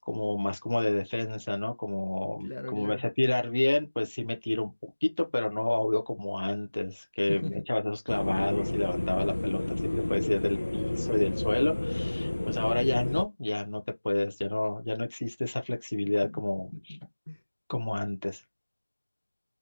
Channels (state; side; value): inverted; both; correlation -1.00